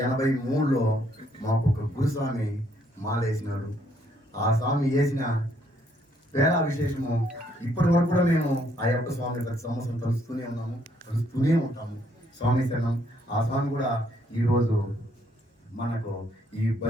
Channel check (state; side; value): normal; both; correlation 0.69